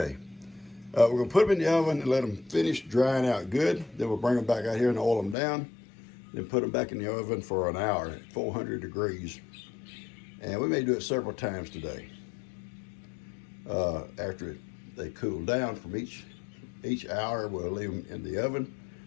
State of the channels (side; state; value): right; drops out; at 5.4 s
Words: We're gonna put them in the oven and let them finish drying out good. Then we'll bring them back out here and oil them down. Then put them back in the oven for an hour at 400 degrees. And we may do it several times today. After they cool down from each hour, we'll leave them in the oven.